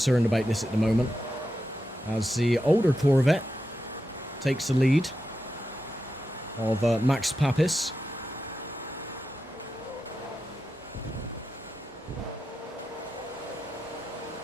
about this at the moment. As the older Corvette takes the lead of Max Papis.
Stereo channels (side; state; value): both; normal; correlation 0.88